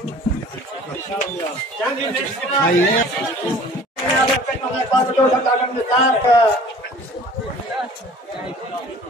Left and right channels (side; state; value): both; normal; correlation 0.47